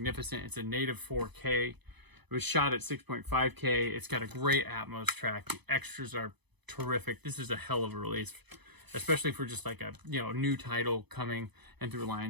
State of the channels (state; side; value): late; left; 0.99 ms